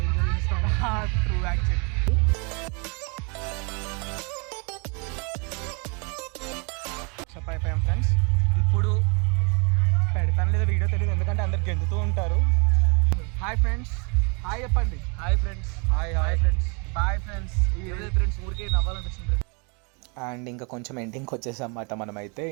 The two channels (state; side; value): quieter; left; 33.5 dB